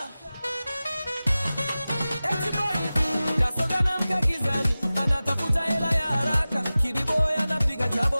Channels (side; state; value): both; inverted; correlation -0.97